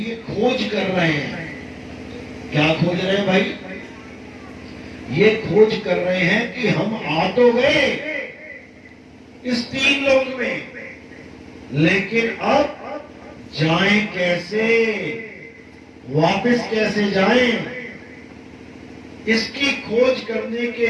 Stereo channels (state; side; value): identical; both; correlation 1.00